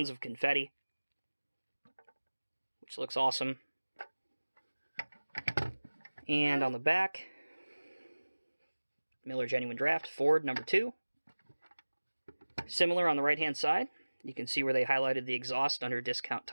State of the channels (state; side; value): inverted; both; correlation -1.00